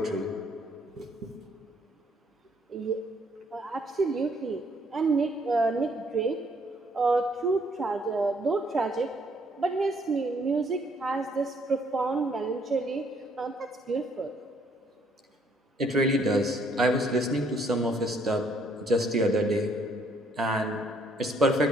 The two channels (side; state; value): both; normal; correlation 0.66